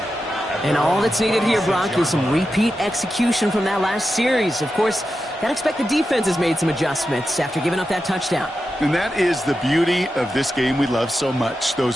And all that's needed here, Brock, is some repeat execution from that last series. Of course, gotta expect the defense has made some adjustments after giving up that touchdown. And that is the beauty of this game we love so much.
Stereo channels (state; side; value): normal; both; correlation 0.90